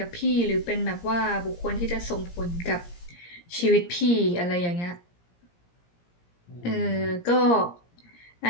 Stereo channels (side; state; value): right; late; 17 ms